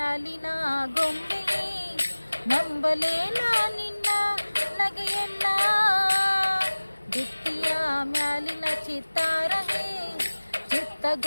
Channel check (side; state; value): both; inverted; correlation -1.00